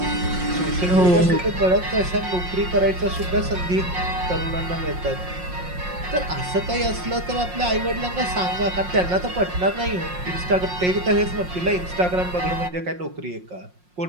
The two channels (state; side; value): late; left; 5.6 ms